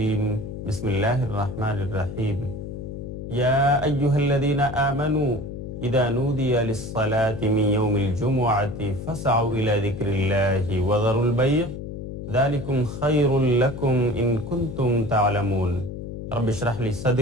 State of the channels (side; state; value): left; noise; hum, 8 dB below the sound